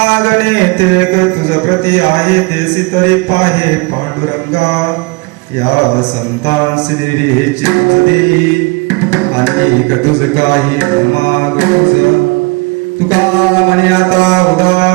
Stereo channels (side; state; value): left; quieter; 27.8 dB